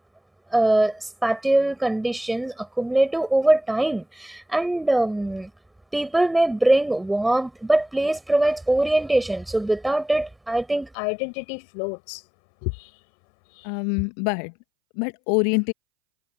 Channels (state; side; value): drops out; right; at 11.0 s